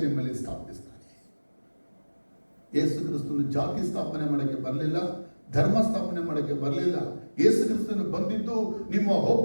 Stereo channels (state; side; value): inverted; both; correlation -1.00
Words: ನಿಮ್ಮಲ್ಲಿ ಸ್ಥಾಪಿಸ್ತಾನೆ. ಯೇಸು ಕ್ರಿಸ್ತನು ಜಾತಿ ಸ್ಥಾಪನೆ ಮಾಡೋಕ್ಕೆ ಬರಲಿಲ್ಲ, ಧರ್ಮ ಸ್ಥಾಪನೆ ಮಾಡೋಕ್ಕೆ ಬರಲಿಲ್ಲ. ಯೇಸು ಕ್ರಿಸ್ತನು ಬಂದಿದ್ದು ನಿಮ್ಮ